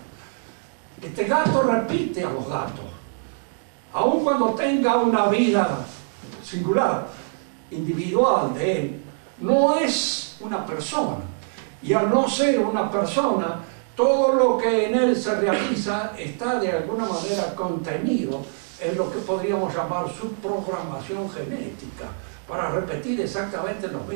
Este gato repite a los gatos, aun cuando tenga una vida singular, individual de él, no es una persona. Y al no ser una persona, todo lo que en él se realiza está de alguna manera contenido en lo que podríamos llamar su programación genética, para repetir exactamente los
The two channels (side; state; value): left; silent; digital silence